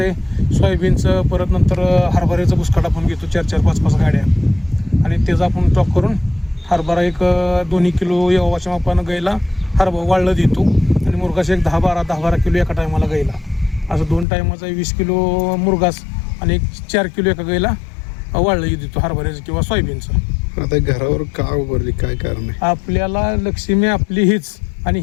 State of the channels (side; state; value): right; drops out; at 14.2 s